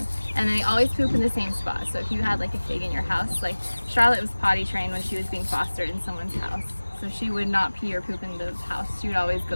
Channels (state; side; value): inverted; both; correlation -1.00